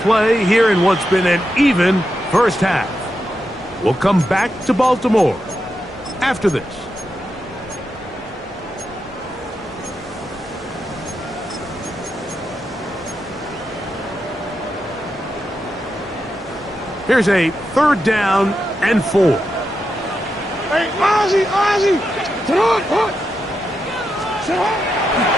here in what's been an even first half. We'll come back to Baltimore after this. Here's a 3rd down and 4. Hey, Ozzie! Sit on!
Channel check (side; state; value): both; normal; correlation 0.86